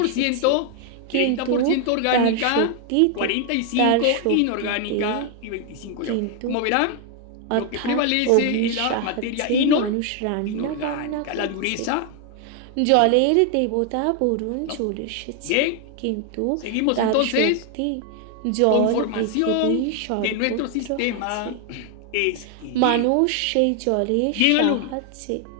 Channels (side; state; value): both; different; correlation 0.00